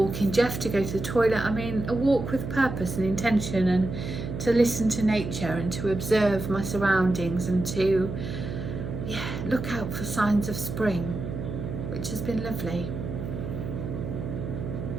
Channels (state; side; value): noise; right; hum, 6 dB below the sound